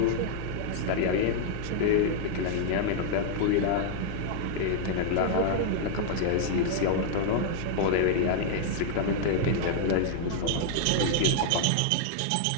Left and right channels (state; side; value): different; both; correlation -0.01